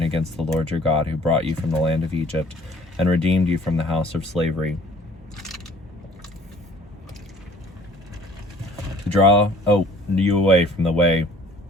against the Lord your God, who brought you from the land of Egypt and redeemed you from the house of slavery, to draw you away from the way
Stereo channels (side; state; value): both; normal; correlation 0.52